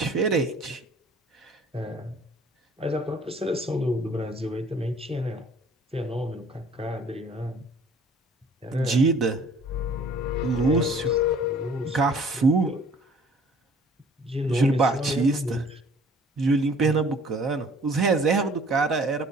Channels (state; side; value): normal; both; correlation 0.53